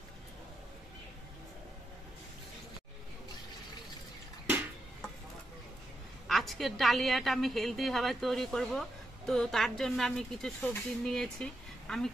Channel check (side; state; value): both; normal; correlation 0.84